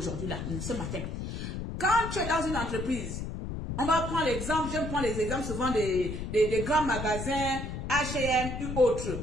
là, ce matin. Quand tu es dans une entreprise, on va prendre l'exemple, j'aime prendre les exemples souvent des grands magasins, H&M ou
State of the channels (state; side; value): noise; left; rumble, 5 dB below the sound